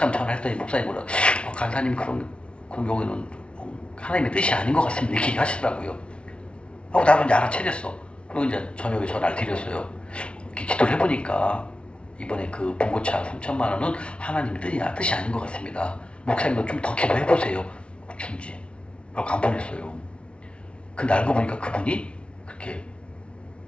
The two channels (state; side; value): late; right; 0.059 ms